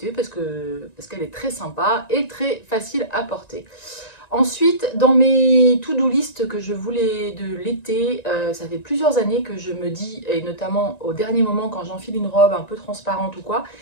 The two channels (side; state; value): right; late; 1.9 ms